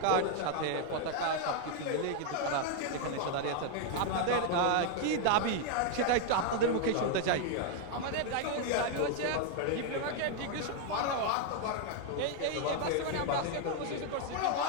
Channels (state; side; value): different; both; correlation 0.01